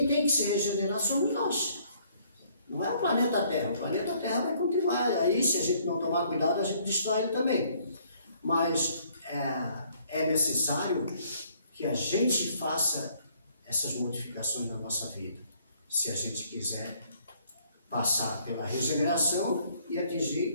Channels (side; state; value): both; inverted; correlation -0.64